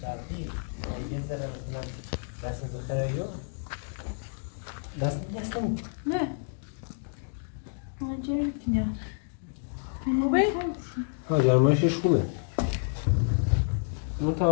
برقی یه ذره مثلا دست بخیره یا دست نیستم نه جر میکنی خوبه؟ ها گرمایشش خوبه اون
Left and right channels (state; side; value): silent; right; digital silence